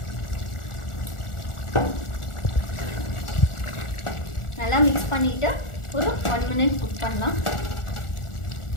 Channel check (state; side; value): late; right; 1.4 ms